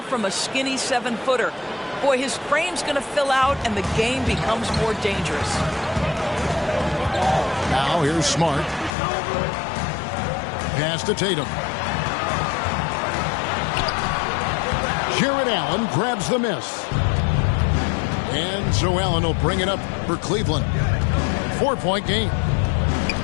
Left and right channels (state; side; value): drops out; right; at 8.9 s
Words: a skinny 7-footer. Boy, his frame's going to fill out, and the game becomes more dangerous. Now here's Smart. Pass to Tatum. Jarrett Allen grabs the miss. And so Allen will bring it up for Cleveland. 4-point game.